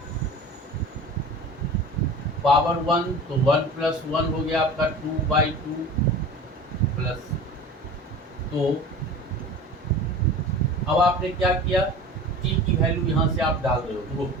पावर 1, तो 1 प्लस 1 हो गया आपका 2/2 प्लस। तो अब आपने क्या किया, t की वैल्यू यहाँ से आप डाल रहे हो, तो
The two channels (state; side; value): normal; both; correlation 0.37